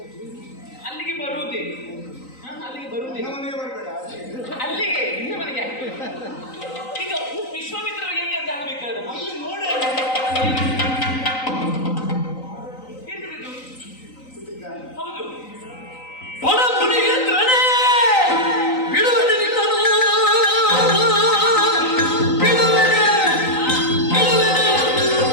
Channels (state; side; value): late; right; 3.9 ms